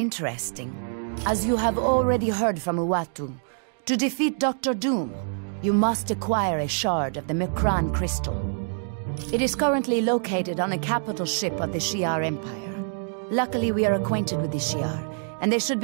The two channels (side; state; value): left; silent; 61 dB below the other